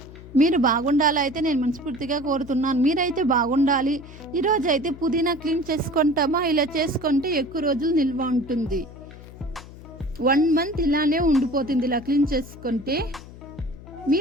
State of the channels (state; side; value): noise; left; hum, 17 dB below the sound